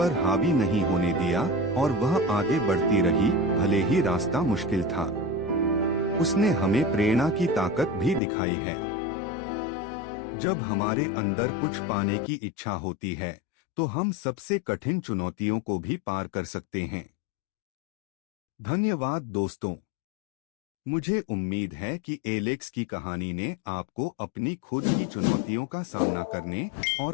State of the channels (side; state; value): right; drops out; at 8.2 s